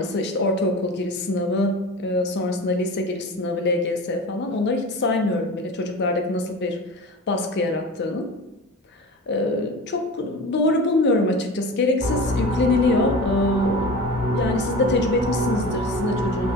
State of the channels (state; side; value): normal; both; correlation 0.33